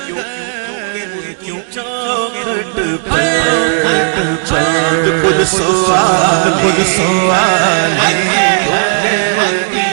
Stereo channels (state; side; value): silent; left; 58 dB below the other